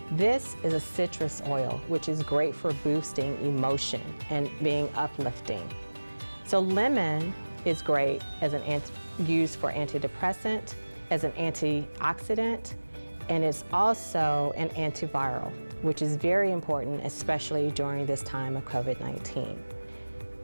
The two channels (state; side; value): inverted; both; correlation -1.00